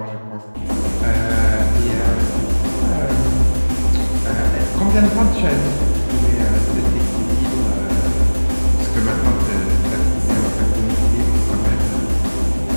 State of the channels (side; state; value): both; inverted; correlation -1.00